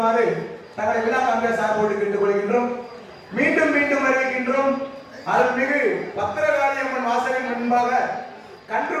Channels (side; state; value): both; identical; correlation 1.00